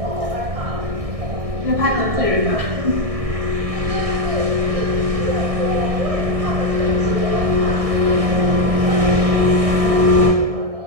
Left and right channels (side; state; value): left; late; 1.6 ms